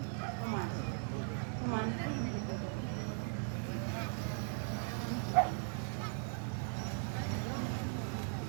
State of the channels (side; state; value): left; silent; 52 dB below the other